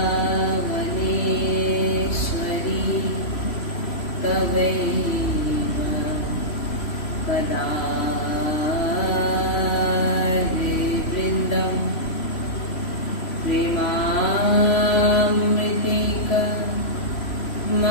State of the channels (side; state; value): right; late; 3.0 ms